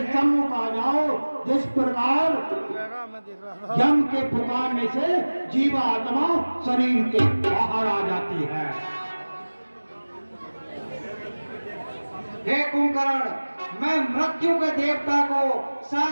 सम्मुख आ जाओ जिस प्रकार यम के पुकारने से जीवात्मा शरीर के बाहर आ जाती है। हे कुंभकर्ण, मैं मृत्यु के देवता को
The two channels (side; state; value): both; inverted; correlation -1.00